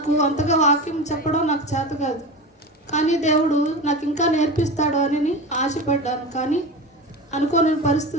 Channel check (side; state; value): both; normal; correlation 0.27